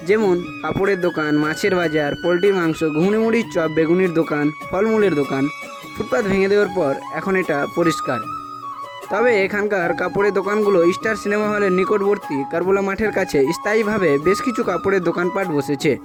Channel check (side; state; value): both; identical; correlation 1.00